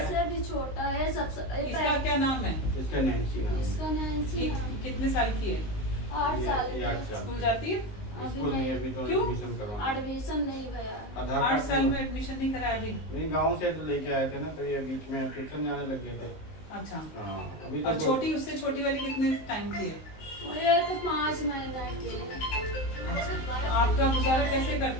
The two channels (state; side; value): late; right; 19 ms